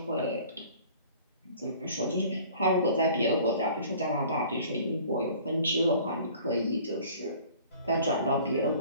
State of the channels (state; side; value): inverted; both; correlation -0.49